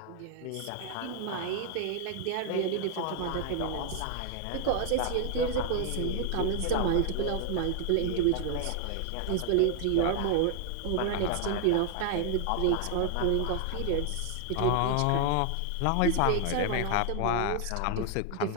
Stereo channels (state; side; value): different; both; correlation 0.00